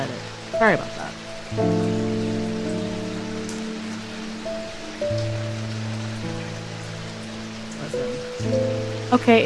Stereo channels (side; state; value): both; identical; correlation 1.00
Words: it. Sorry about that. Okay,